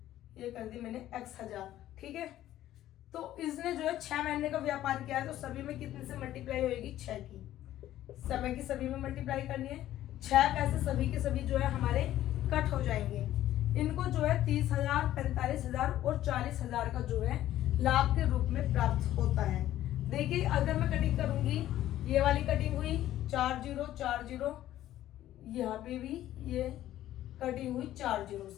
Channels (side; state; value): right; quieter; 13.3 dB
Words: ये कर दी मैंने x 1,000। ठीक है, तो इसने जो है 6 महीने का व्यापार किया है, तो सभी में कितने से मल्टीप्लाई होगी, 6 की, समय की सभी में मल्टीप्लाई करनी है। 6 पैसे सभी के सभी जो है हमारे कट हो जाएंगे। इनको जो है 30,000, 45,000 और 40,000 का जो है लाभ के रूप में प्राप्त होता है। देखिए अगर मैं कटिंग करूंगी, ये वाली कटिंग हुई 4 जीरो 4 जीरो, यहाँ पे भी ये कटिंग हुई 4 जीरो